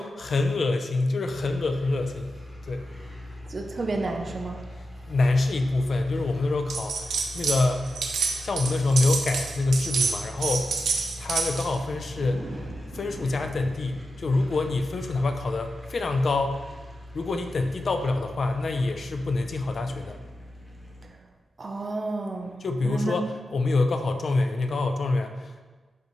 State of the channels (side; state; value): both; normal; correlation 0.90